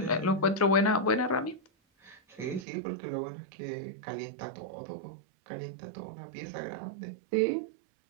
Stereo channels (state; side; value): drops out; left; at 2.7 s